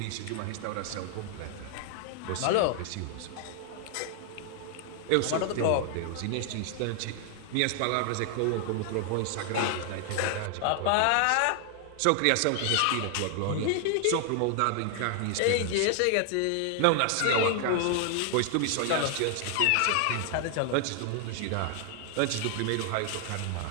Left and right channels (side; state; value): both; different; correlation 0.00